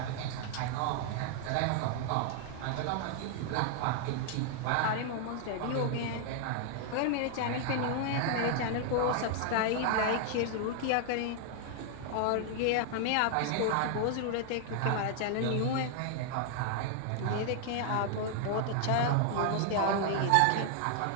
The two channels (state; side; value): different; both; correlation 0.00